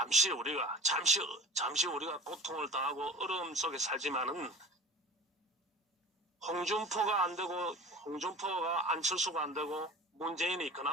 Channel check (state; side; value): normal; both; correlation 0.38